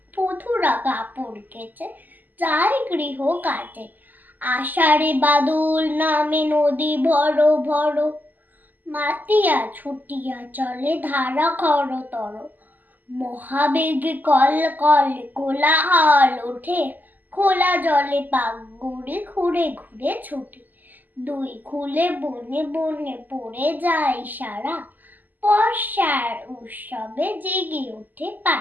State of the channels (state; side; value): late; left; 0.085 ms